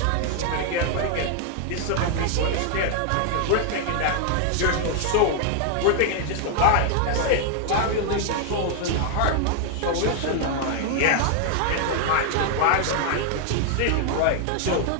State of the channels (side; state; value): both; different; correlation 0.00